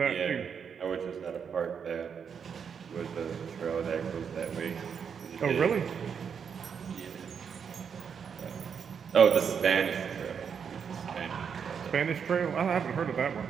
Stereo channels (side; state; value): left; quieter; 6.9 dB